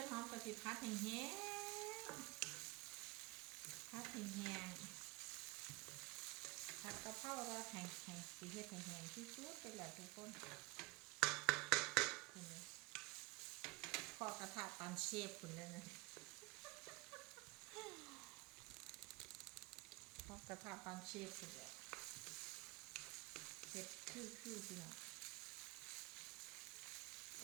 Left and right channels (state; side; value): quieter; left; 23.6 dB